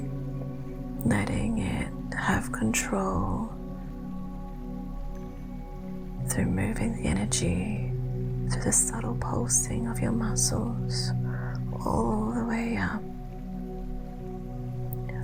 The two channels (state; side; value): identical; both; correlation 1.00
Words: letting it have control through moving the energy through the subtle pulsing of your muscles all the way up